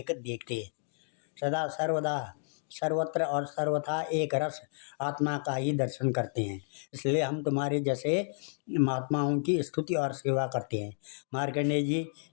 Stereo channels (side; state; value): right; silent; digital silence